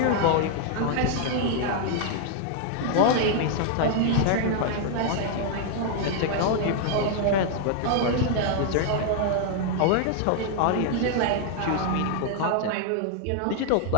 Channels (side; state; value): both; different; correlation 0.00